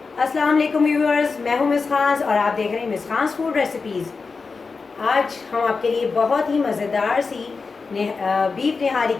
अस्सलाम वालेकुम व्यूअर्स, मैं हूँ मिस खान और आप देख रहे हैं मिस खान फूड रेसिपीज़। आज हम आपके लिए बहुत ही मज़ेदार सी बीफ निहारी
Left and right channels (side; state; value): right; quieter; 4.6 dB